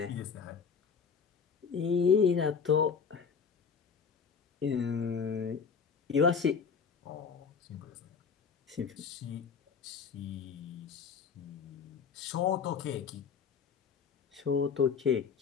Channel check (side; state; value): right; quieter; 6.2 dB